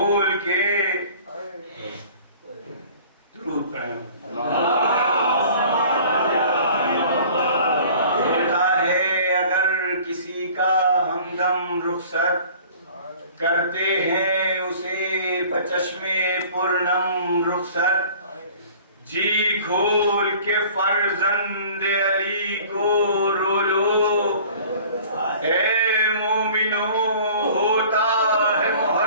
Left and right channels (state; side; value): inverted; both; correlation -0.48